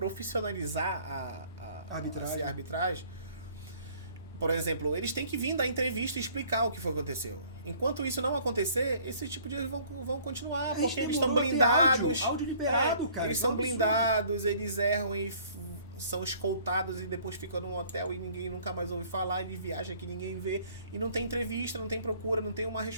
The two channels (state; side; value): inverted; both; correlation -0.56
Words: a arbitragem. Por exemplo, eles têm que vir dar entrevista e explicar o que foi que aconteceu. Enquanto isso não acontecer, esse tipo de erros vão continuar, porque eles estão blindados. Áudio liberado, cara. Eles são blindados, eles erram e são escoltados e depois ficam num hotel e ninguém nunca mais ouve falar, ele viaja que ninguém vê. E não tem entrevista, não tem procura, não tem uma